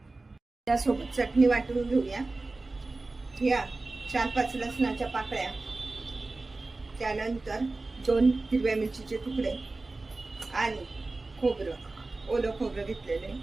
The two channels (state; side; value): quieter; left; 3.3 dB